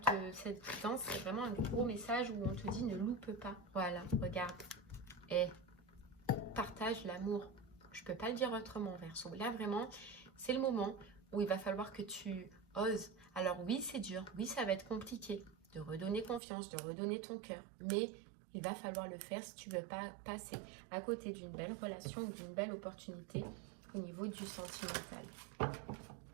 cette danse, c'est vraiment un gros message où on te dit ne loupe pas. Voilà, regarde. Et partage l'amour. Je ne peux pas le dire autrement, Verseau. Là, vraiment, c'est le moment où il va falloir que tu oses. Alors oui, c'est dur. Oui, ça va être compliqué de redonner confiance, de redonner ton cœur. Mais il va falloir le faire si tu ne veux pas passer à côté d'une belle relation ou d'une belle opportunité au niveau du sentimental.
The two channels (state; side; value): drops out; left; at 16.4 s